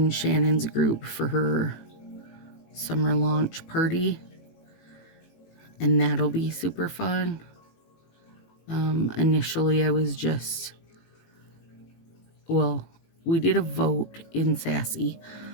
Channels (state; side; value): late; right; 18 ms